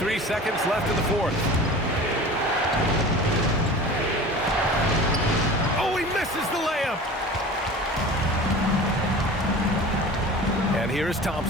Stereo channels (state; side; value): normal; both; correlation 0.38